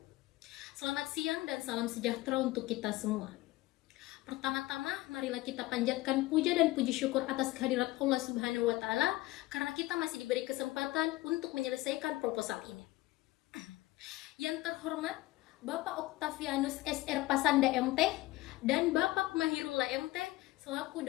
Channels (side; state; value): right; quieter; 19.0 dB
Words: Selamat siang dan salam sejahtera untuk kita semua. Pertama-tama, marilah kita panjatkan puja dan puji syukur atas kehadirat Allah Subhanahu wa Ta'ala, karena kita masih diberi kesempatan untuk menyelesaikan proposal ini. Yang terhormat, Bapak Octavianus SR Pasanda MT dan Bapak Mahirullah MT selaku